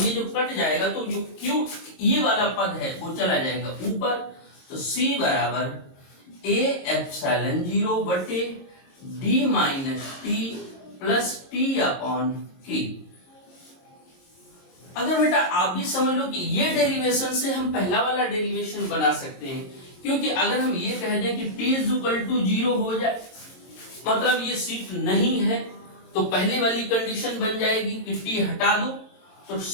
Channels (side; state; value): right; late; 22 ms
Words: ये जो कट जाएगा तो जो Q ये वाला पद है वो चला जाएगा ऊपर। तो C बराबर A एप्सिलॉन 0 बटे D minus T plus T upon K। अगर बेटा आप भी समझ लो कि ये डेरिवेशन से हम पहला वाला डेरिवेशन बना सकते हैं, क्योंकि अगर हम ये कह दें कि T इज इक्वल टू 0 हो जाए, मतलब ये सीट नहीं है, तो पहले वाली कंडीशन बन जाएगी कि T हटा दो, तो